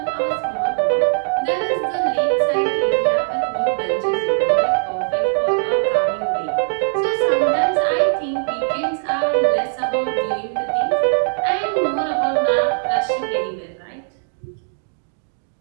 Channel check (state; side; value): silent; left; digital silence